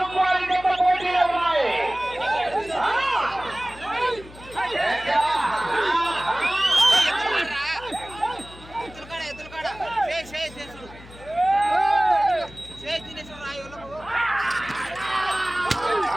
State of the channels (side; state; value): left; noise; hum, 19 dB below the sound